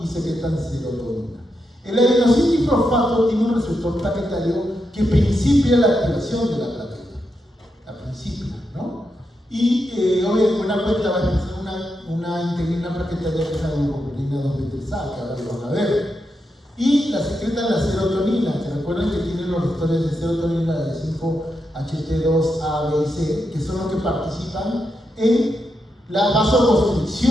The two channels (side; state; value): both; normal; correlation 0.85